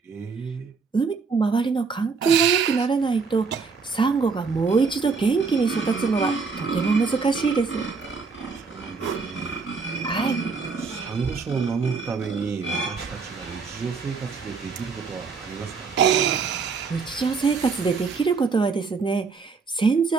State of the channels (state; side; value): quieter; left; 4.9 dB